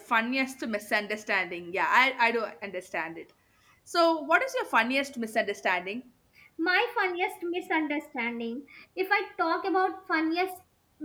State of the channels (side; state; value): both; identical; correlation 1.00